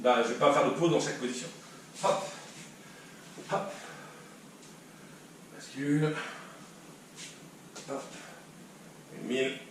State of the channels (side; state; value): both; identical; correlation 1.00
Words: Là, je ne vais pas faire de pause dans chaque position. Hop. Hop. Bascule. Hop. 1000.